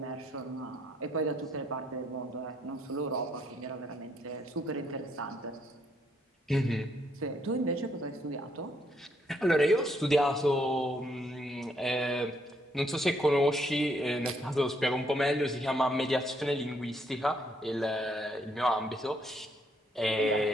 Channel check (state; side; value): normal; both; correlation 0.71